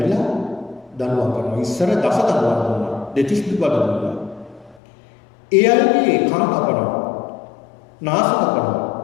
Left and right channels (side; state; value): right; drops out; at 4.8 s